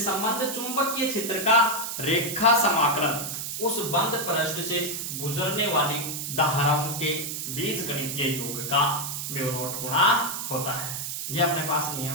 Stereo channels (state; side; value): noise; right; hiss, 5 dB below the sound